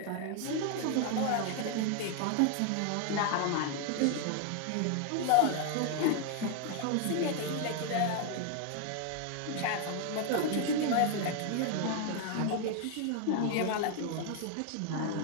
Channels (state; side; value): different; both; correlation 0.00